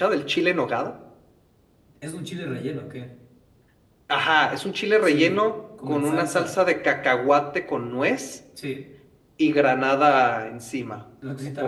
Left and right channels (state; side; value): identical; both; correlation 1.00